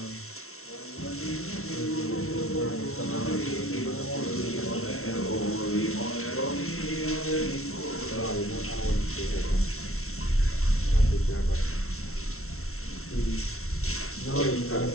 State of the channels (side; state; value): right; late; 0.63 ms